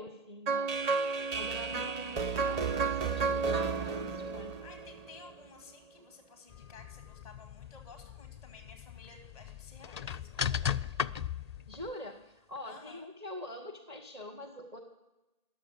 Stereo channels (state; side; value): late; left; 1.8 ms